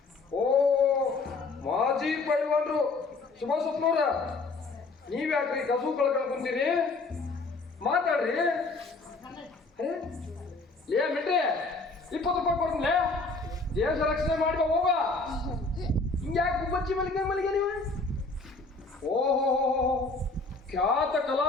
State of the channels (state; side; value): quieter; right; 3.7 dB